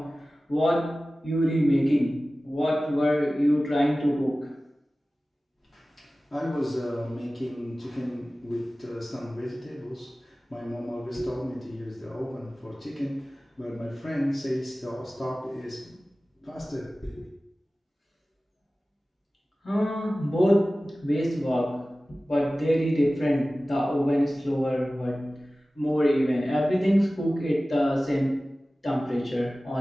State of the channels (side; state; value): both; normal; correlation 0.96